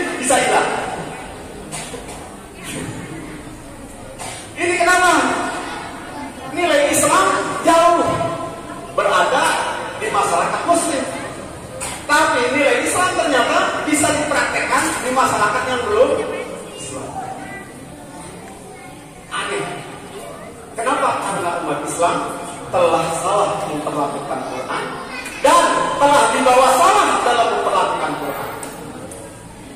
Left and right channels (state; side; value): identical; both; correlation 1.00